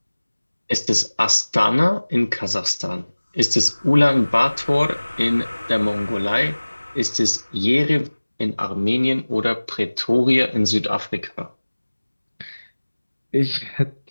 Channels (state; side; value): inverted; both; correlation -1.00